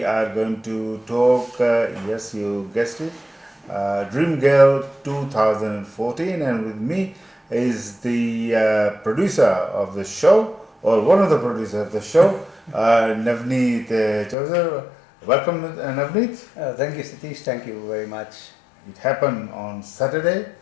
are going to talk, yes you guessed it, Dream Girl 2014, and with me is the producer of the show, or one of the producers of the show, Navneet Choujar. Welcome Navneet. Thank you, Satish. Thank you very much. It happened on Saturday.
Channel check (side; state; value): right; drops out; at 14.4 s